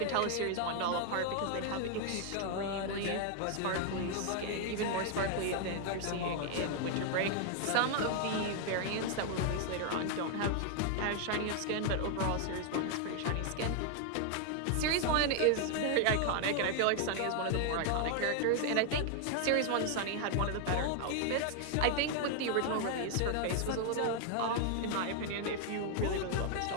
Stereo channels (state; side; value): different; both; correlation 0.00